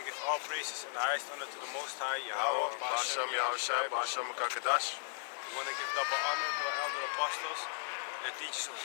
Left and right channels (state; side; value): silent; right; digital silence